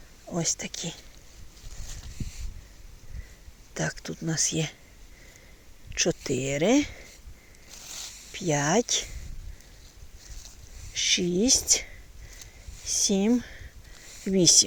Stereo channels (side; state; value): both; identical; correlation 1.00